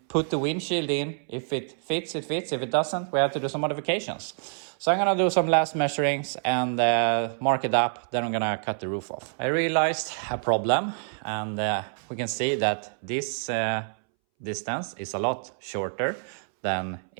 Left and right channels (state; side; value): silent; left; 60 dB below the other